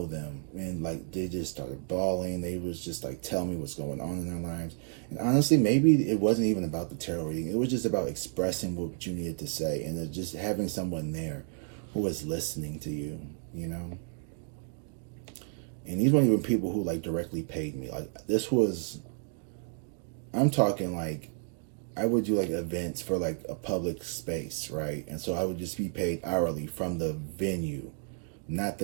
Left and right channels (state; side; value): silent; left; 57 dB below the other